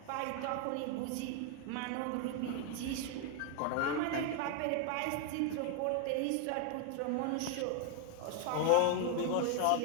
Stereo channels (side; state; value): both; different; correlation 0.00